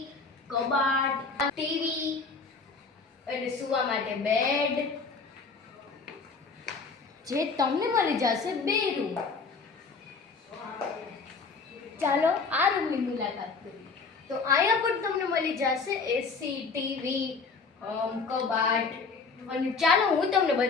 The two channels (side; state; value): right; quieter; 4.6 dB